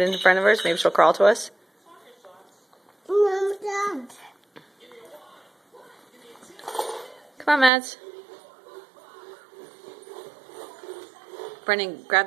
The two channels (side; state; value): left; drops out; at 7.7 s